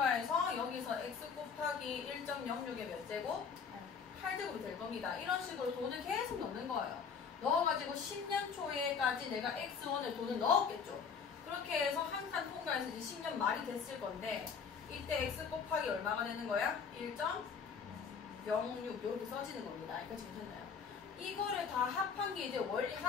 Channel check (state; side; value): quieter; right; 6.1 dB